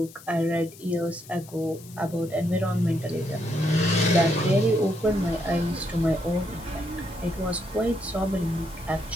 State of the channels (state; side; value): noise; left; hiss, 20 dB below the sound